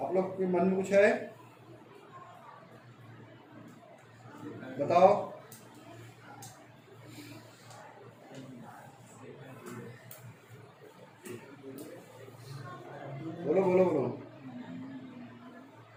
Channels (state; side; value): identical; both; correlation 1.00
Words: आप लोग के मन में कुछ है? बताओ। बोलो बोलो बोलो